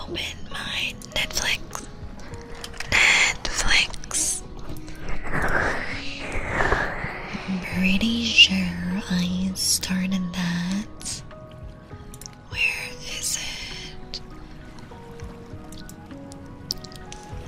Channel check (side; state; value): both; identical; correlation 1.00